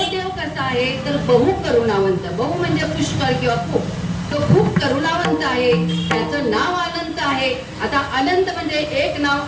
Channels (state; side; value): identical; both; correlation 1.00